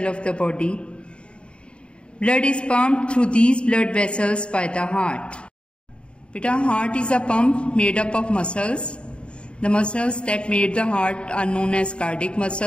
of the body. Blood is pumped through these blood vessels by the heart. Beta, heart is a pump made up of muscles. The muscles that made the heart are known as cardiac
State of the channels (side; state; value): right; late; 0.055 ms